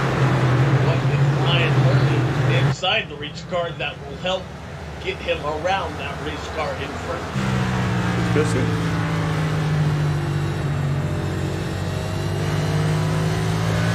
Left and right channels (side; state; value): both; identical; correlation 1.00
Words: Inside the race car that will help get him around that race car in front. Let's go see.